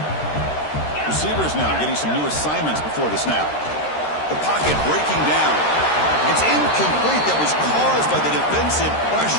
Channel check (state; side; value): late; right; 13 ms